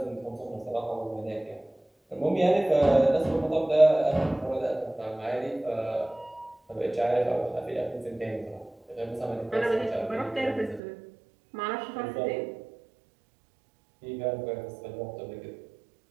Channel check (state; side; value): drops out; left; at 10.8 s